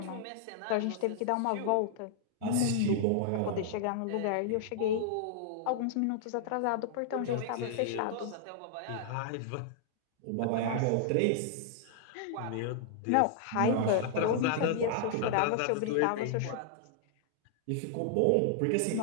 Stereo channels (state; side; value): different; both; correlation -0.01